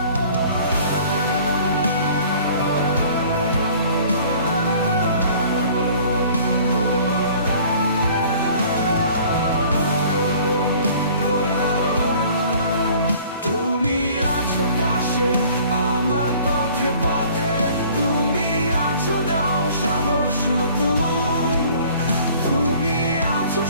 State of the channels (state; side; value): inverted; both; correlation -0.52